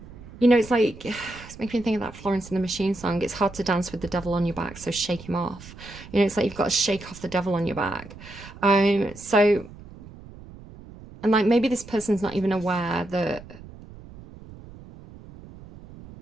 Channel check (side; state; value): right; noise; rumble, 18 dB below the sound